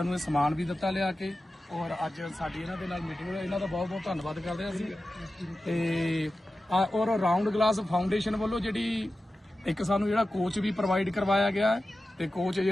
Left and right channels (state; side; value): normal; both; correlation 0.94